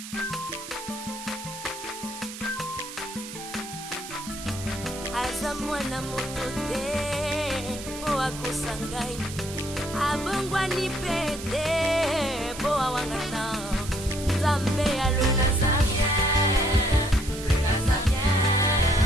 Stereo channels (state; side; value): noise; right; hiss, 11 dB below the sound